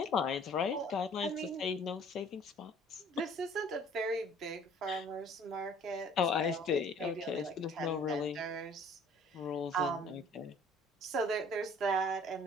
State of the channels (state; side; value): normal; both; correlation 0.53